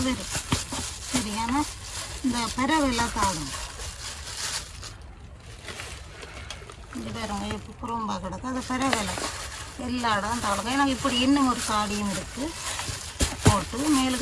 வரும். சரியான இந்த பறவைலாம் தாடும். இந்த பாருங்க இப்போ புறம்பா கிடக்கு. அது பறவைல எல்லா இடம் தாடுங்க. எனக்கு இப்படி இன்னும் ஒரு காடியும் இருக்குது. போட்டு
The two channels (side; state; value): both; identical; correlation 1.00